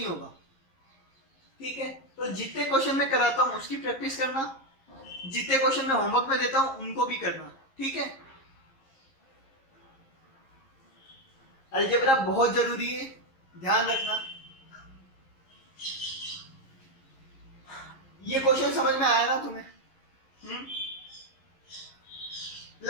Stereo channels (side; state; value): right; late; 11 ms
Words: होगा, ठीक है। तो जितने क्वेश्चन मैं कराता हूं उसकी प्रैक्टिस करना, जितने क्वेश्चन मैं होमवर्क में देता हूं उनको भी करना, ठीक है। अलजेब्रा बहुत जरूरी है, ध्यान रखना। ये क्वेश्चन समझ में आया ना तुम्हें?